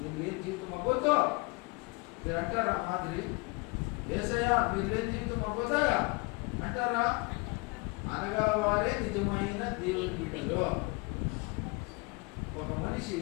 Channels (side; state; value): right; quieter; 28.1 dB